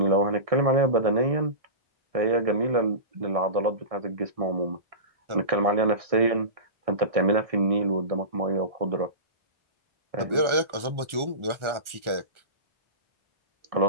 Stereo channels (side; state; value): left; late; 1.4 ms